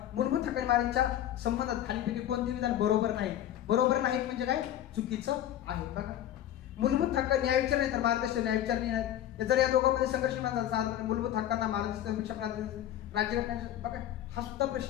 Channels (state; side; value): quieter; right; 11.8 dB